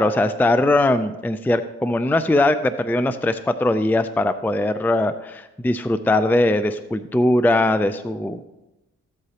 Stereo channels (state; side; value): normal; both; correlation 0.83